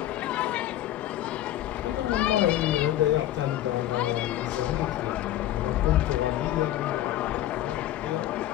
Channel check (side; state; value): right; quieter; 13.2 dB